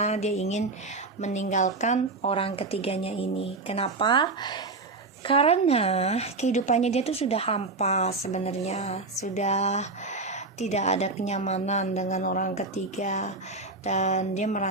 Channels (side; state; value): left; quieter; 3.4 dB